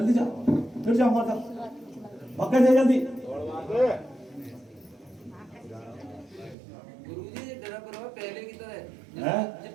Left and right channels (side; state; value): left; drops out; at 6.6 s